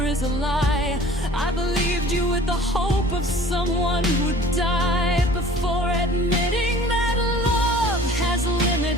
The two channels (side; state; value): both; normal; correlation 0.48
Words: is a lie. I believed you with the hope of someone who'd die before admitting that love has